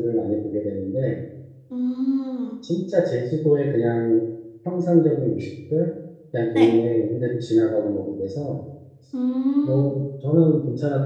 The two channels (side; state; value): both; identical; correlation 1.00